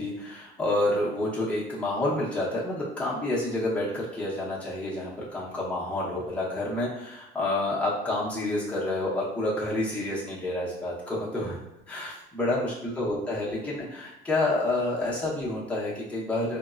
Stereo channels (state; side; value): normal; both; correlation 0.55